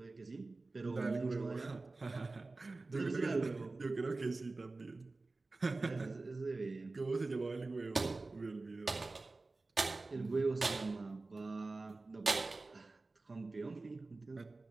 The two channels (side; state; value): left; quieter; 3.4 dB